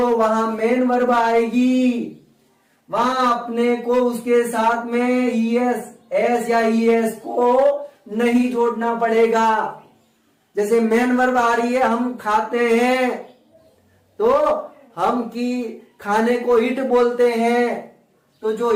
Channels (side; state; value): both; identical; correlation 1.00